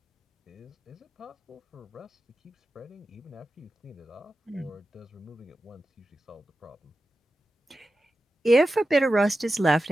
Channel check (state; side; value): normal; both; correlation 0.92